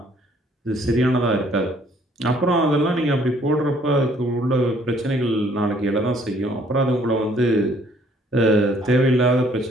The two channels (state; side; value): normal; both; correlation 0.62